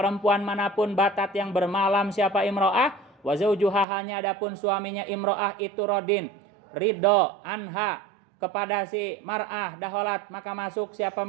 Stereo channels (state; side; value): drops out; left; at 3.9 s